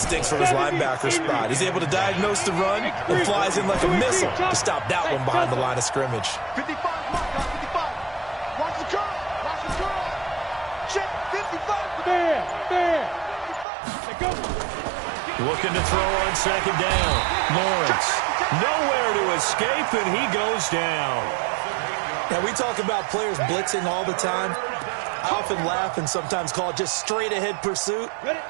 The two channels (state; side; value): drops out; left; at 13.7 s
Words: from his linebacker spot. He's able to diagnose the run and flies in like a missile to stop that one behind the line of scrimmage. 55, Watch the curl. Check 55. There. Go. Looking to throw on second down. Lawrence. Nowhere to escape, and he goes down. Now, we talk about players blitzing all the time. I often laugh and sometimes call it just straight-ahead pursuit.